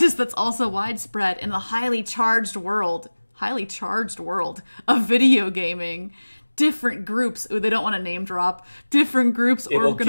that's also widespread in the highly charged world of video gaming. Different groups, they don't want to name drop, different groups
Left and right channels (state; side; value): inverted; both; correlation -1.00